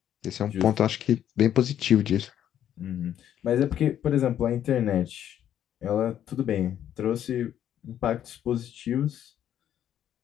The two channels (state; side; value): quieter; right; 10.5 dB